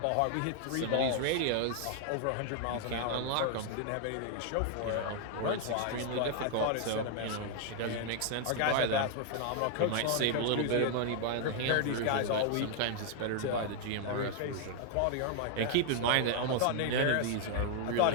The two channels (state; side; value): different; both; correlation 0.00